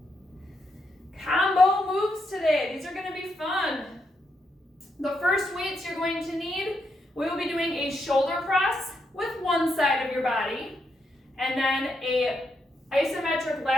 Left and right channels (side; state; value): both; normal; correlation 0.80